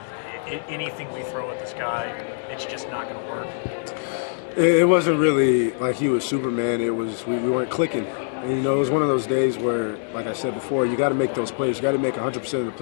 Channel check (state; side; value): silent; right; 62 dB below the other